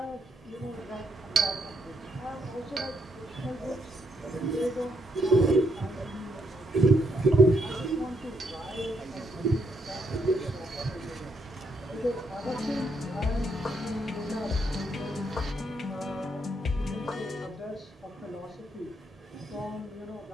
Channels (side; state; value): both; normal; correlation 0.74